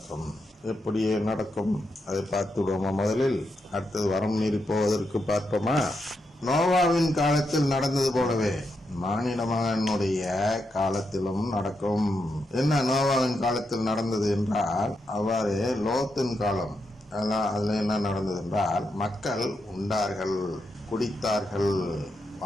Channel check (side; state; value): both; normal; correlation 0.83